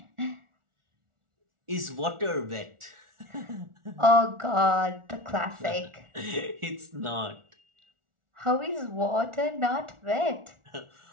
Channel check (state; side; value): late; left; 1.4 ms